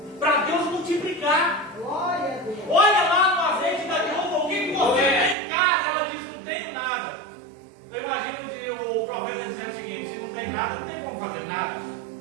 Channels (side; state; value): left; drops out; at 5.4 s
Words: para Deus multiplicar. Glória a Deus. Olha lá no azeite da viúva, o que você tem em casa? Ela diz, não tenho nada. Eu imagino o profeta dizendo o seguinte: se não tem nada, não tem como fazer nada.